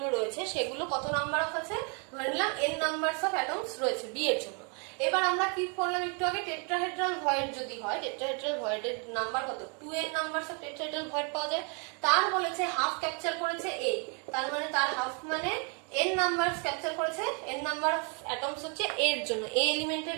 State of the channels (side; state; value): left; quieter; 36.6 dB